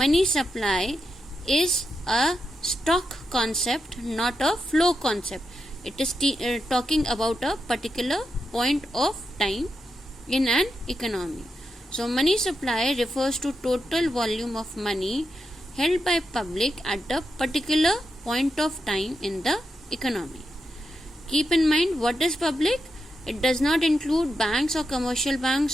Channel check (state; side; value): normal; both; correlation 0.86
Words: supply is a stock concept, not a flow concept. It is talking about a particular point of time in an economy. So money supply refers to total volume of money held by public at a particular point of time in the economy. Keep in mind, what is public? It does not include banks or commercial